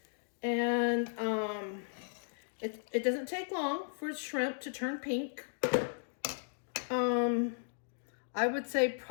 and it doesn't take long for shrimp to turn pink. I would say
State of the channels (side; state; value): right; silent; digital silence